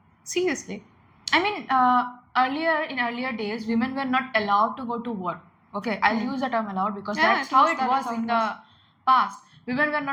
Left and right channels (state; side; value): identical; both; correlation 1.00